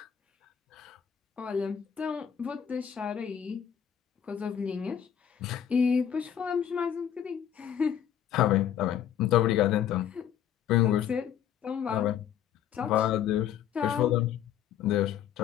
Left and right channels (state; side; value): quieter; right; 9.4 dB